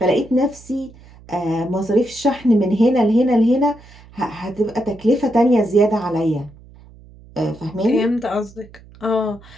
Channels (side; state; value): right; noise; hum, 23 dB below the sound